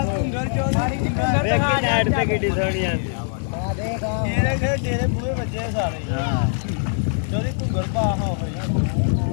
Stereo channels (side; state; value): right; silent; 64 dB below the other